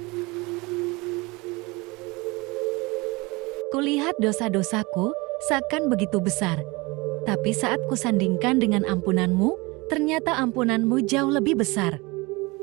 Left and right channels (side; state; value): left; quieter; 24.8 dB